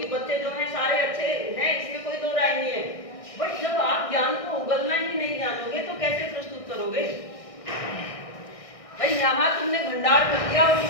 बच्चे जो हैं सारे अच्छे हैं, इसमें कोई दो राय नहीं है। बट जब आप ज्ञान को उगलना ही नहीं जानोगे तो कैसे प्रस्तुत करोगे? भाई यहाँ तुमने भंडार कर दिया और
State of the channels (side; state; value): right; late; 1.6 ms